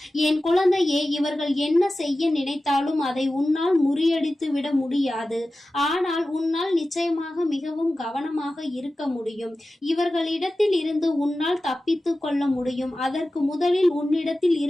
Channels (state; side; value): normal; both; correlation 0.95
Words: என் குழந்தையே, இவர்கள் என்ன செய்ய நினைத்தாலும் அதை உன்னால் முறியடித்து விட முடியாது. ஆனால் உன்னால் நிச்சயமாக மிகவும் கவனமாக இருக்க முடியும். இவர்களிடத்தில் இருந்து உன்னால் தப்பித்து கொள்ள முடியும். அதற்கு முதலில் உன்னிடத்தில்